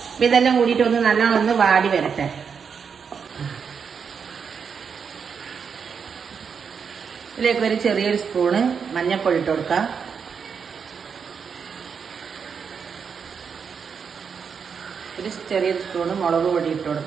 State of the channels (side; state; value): left; quieter; 6.4 dB